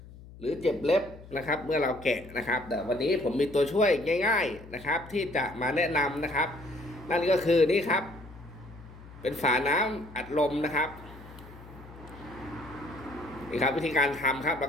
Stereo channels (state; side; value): noise; left; hum, 18 dB below the sound